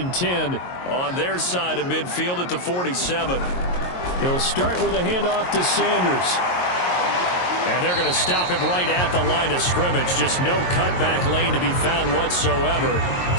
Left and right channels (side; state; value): right; late; 22 ms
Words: 10 on their side of midfield at the 47. He'll start with a handoff to Sanders. And they're going to stop him right at the line of scrimmage. Just no cutback lane to be found whatsoever.